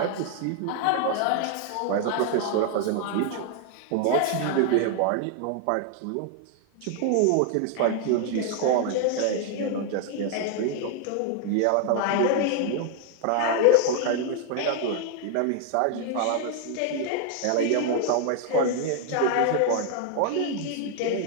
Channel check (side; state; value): both; different; correlation 0.00